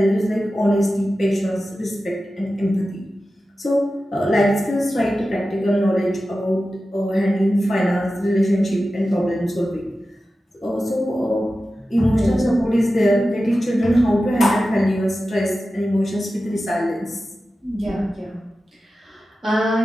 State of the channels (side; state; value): both; normal; correlation 0.93